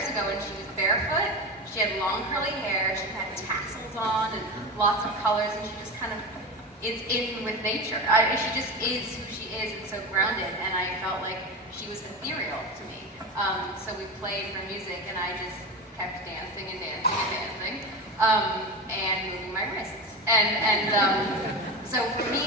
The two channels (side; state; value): both; normal; correlation 0.24